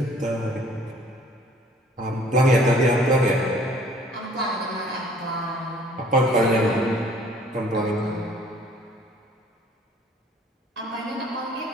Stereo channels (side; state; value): both; normal; correlation 0.56